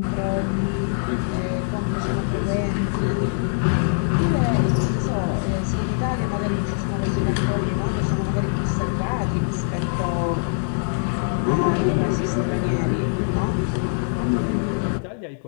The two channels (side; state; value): right; silent; 63 dB below the other